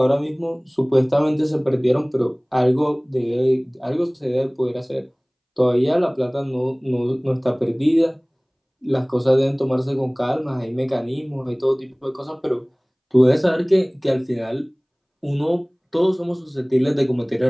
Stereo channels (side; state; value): both; identical; correlation 1.00